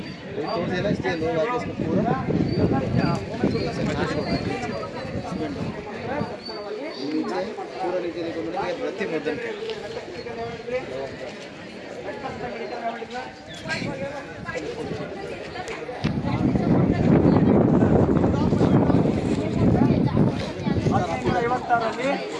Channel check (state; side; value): identical; both; correlation 1.00